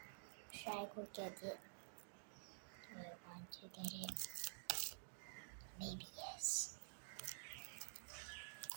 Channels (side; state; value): left; silent; digital silence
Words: Should I go get it? Do I want to get it? Maybe yes.